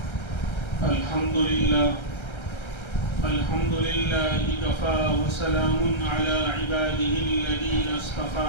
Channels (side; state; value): right; late; 1.3 ms